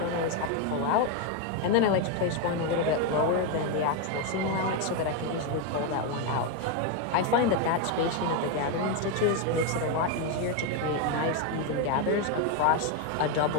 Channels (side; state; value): both; different; correlation 0.02